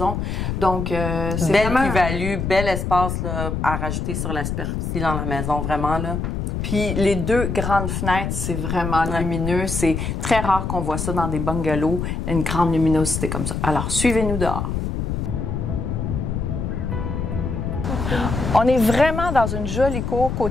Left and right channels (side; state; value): left; noise; rumble, 2 dB below the sound